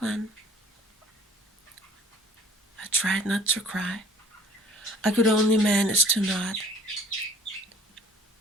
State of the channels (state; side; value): normal; both; correlation 0.52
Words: I tried not to cry. I could only manage to nod.